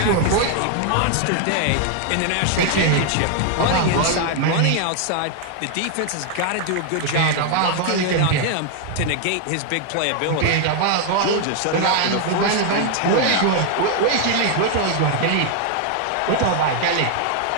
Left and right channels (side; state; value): both; different; correlation 0.00